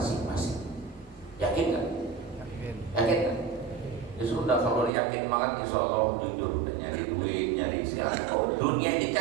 Yakin kan? Yakin kan? Ya sudah, kalau yakin banget insya Allah jujur, nyari duit, nyari silakan. Oh, dunia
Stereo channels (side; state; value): left; drops out; at 4.9 s